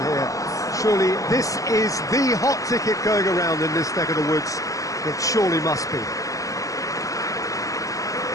here. Surely this is the hot ticket going around in this neck of the woods. It surely must be.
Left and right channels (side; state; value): right; late; 0.16 ms